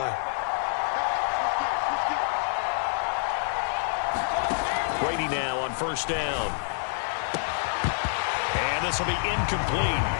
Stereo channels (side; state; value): right; silent; 60 dB below the other